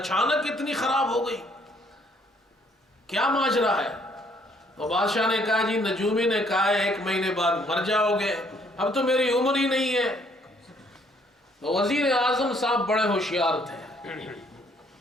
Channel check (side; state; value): both; normal; correlation 0.65